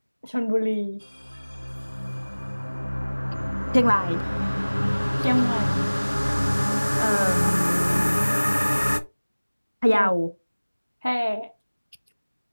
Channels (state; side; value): inverted; both; correlation -1.00